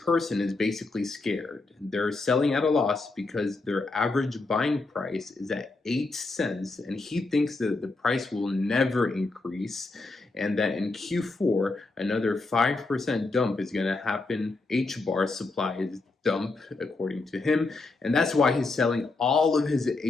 person is basically scared. They're selling at a loss because their average buying price is at 8 cents. And he thinks that the price will never increase and that in Q4, another 5% dump is going to happen. Hbar supply is dump, according to him. And that's why he's selling all of his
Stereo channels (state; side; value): quieter; right; 3.5 dB